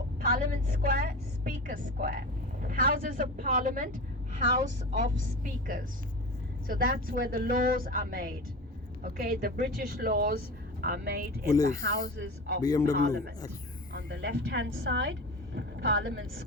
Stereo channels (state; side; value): normal; both; correlation 0.30